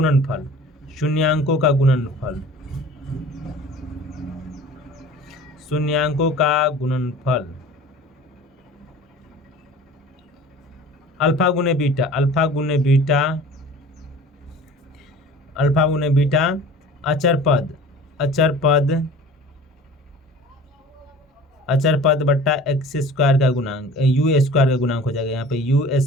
शून्यांकों का गुणनफल, शून्यांकों का गुणनफल अल्फा गुने बीटा, अल्फा गुने बीटा, अल्फा गुने बीटा अचर पद, अचर पद, अचर पद बट्टा एक्स स्क्वायर का गुणांक, यू स्क्वायर का गुणांक हो जाएगा। यहाँ पे यू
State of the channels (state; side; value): normal; both; correlation 0.43